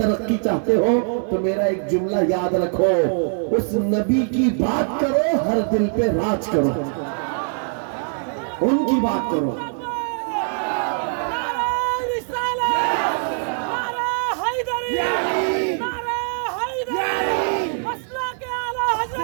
چاہتے ہو تو میرا ایک جملہ یاد رکھو، اس نبی کی بات کرو، ہر دل پہ راج کرو، ان کی بات کرو۔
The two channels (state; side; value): silent; left; 64 dB below the other